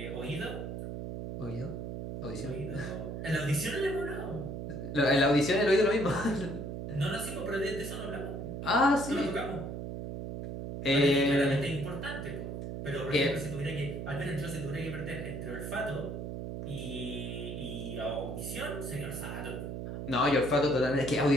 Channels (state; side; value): noise; right; hum, 6 dB below the sound